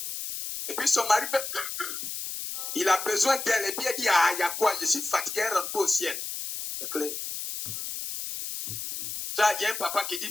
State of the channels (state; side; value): noise; left; hiss, 6 dB below the sound